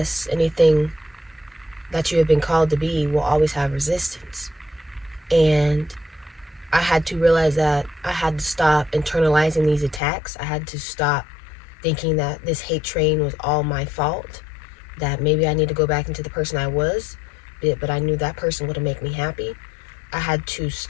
anything that you have been called to be will always have resistance. And I had to realize that I had to stop internalizing these attacks. I had to stop thinking that this hate train was all my fault, that maybe I need to go back into the person I was, but I knew that person wouldn't make me happy. I had to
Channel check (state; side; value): drops out; right; at 10.0 s